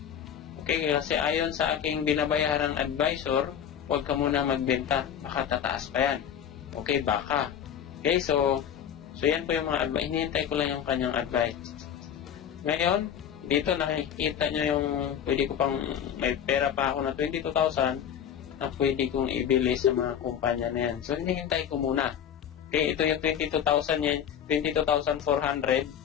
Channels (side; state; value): right; quieter; 9.0 dB